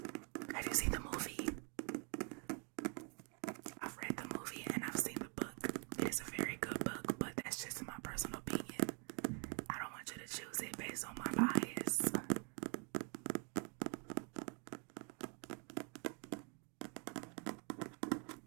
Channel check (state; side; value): quieter; left; 37.2 dB